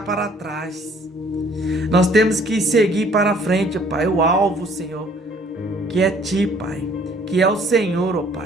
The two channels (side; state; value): both; normal; correlation 0.58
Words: para trás. Nós temos que seguir para frente, ó Pai, o alvo, Senhor, que é Ti, Pai, que é o Senhor, ó